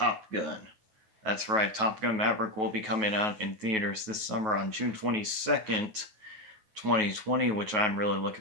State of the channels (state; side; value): late; left; 9.3 ms